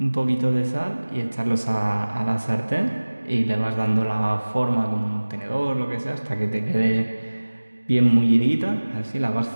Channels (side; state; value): both; inverted; correlation -1.00